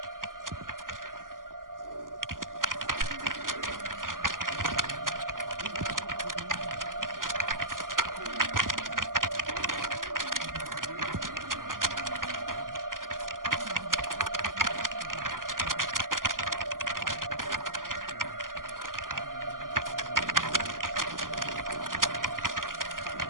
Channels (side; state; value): left; late; 0.90 ms